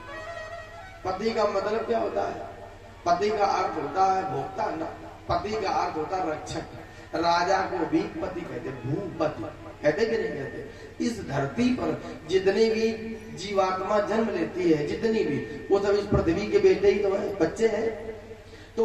पति का मतलब क्या होता है? पति का अर्थ होता है भोक्ता, पति का अर्थ होता है रक्षक। राजा को भी पति कहते, भूपति कहते कि नहीं कहते? इस धरती पर जितनी भी जीवात्मा जन्म लेती है, जितनी भी, वो सब इस पृथ्वी के बेटे ही तो है, बच्चे हैं।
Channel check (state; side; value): identical; both; correlation 1.00